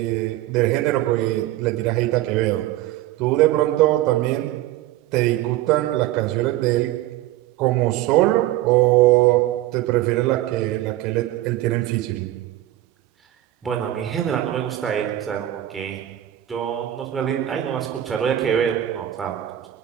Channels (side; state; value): left; quieter; 14.4 dB